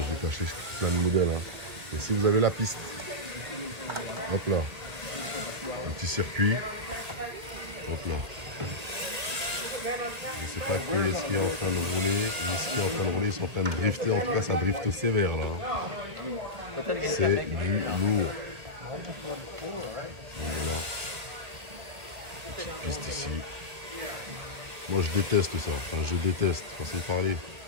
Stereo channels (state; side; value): late; left; 2.0 ms